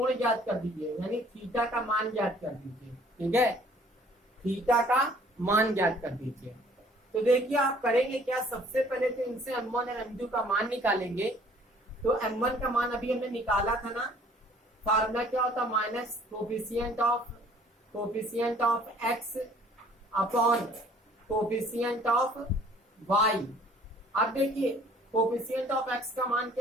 ज्ञात कर दीजिए, यानी थीटा का मान ज्ञात कर दीजिए, ठीक है, थीटा का मान ज्ञात कर दीजिए। तो देखिए आप करेंगे क्या, सबसे पहले तो इनसे m1 और m2 का मान निकालेंगे। तो m1 का मान अभी हमने निकाला था ना, फार्मूला क्या होता minus coefficient of x upon coefficient of y। अब देखिए कोफिशिएंट ऑफ x का मान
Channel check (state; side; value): normal; both; correlation 0.56